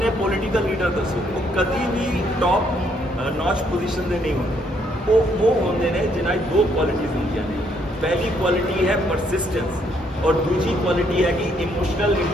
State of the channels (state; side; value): normal; both; correlation 0.70